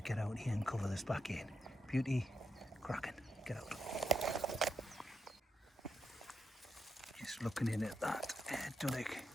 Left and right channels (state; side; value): normal; both; correlation 0.85